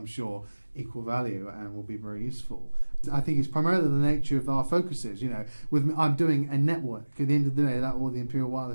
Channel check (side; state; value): both; inverted; correlation -1.00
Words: sure, equal value and will be very useful. I think it's primarily the nature of our focuses. You know, I'm doing a network. At the end of the day, that all the Imperial